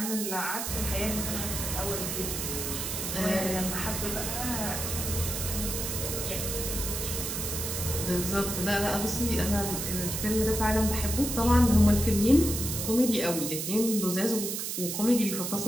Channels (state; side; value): noise; right; hiss, 3 dB below the sound